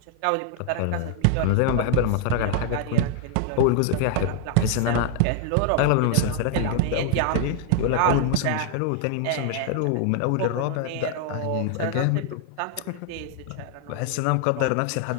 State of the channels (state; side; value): different; both; correlation 0.00